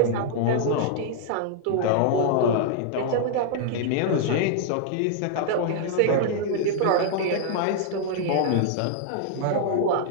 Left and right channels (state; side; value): different; both; correlation -0.01